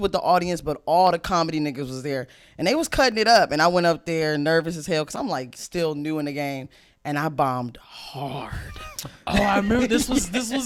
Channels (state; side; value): identical; both; correlation 1.00